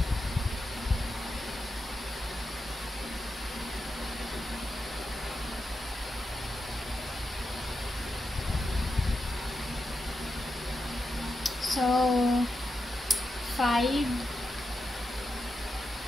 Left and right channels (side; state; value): both; normal; correlation 0.88